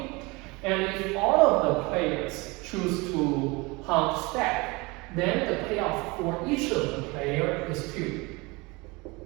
and if all of the players choose to hunt stack, then the payoff for each of the player is 2.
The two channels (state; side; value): quieter; left; 25.3 dB